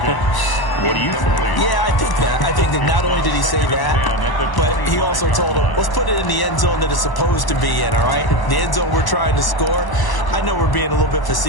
do you think? Yeah, I think that. I think that not only did he say that, but he also told him, let's put it in the end zone that it's supposed to be in, all right? The end zone we're trying to score. I know we're being a little bit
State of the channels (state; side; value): late; right; 1.0 ms